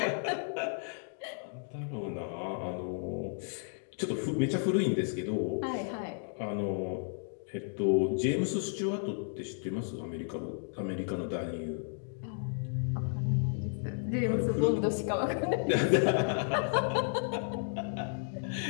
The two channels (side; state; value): right; silent; digital silence